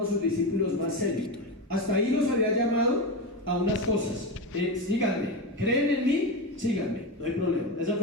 a sus discípulos más serios. Hasta ahí los había llamado a unas cosas: síganme, creen en mí, síganme, no hay problema. Esa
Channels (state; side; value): normal; both; correlation 0.17